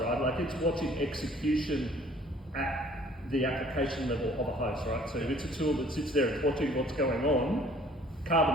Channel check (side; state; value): both; normal; correlation 0.55